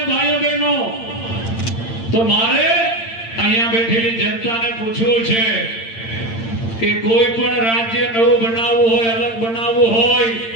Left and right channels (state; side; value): late; right; 8.8 ms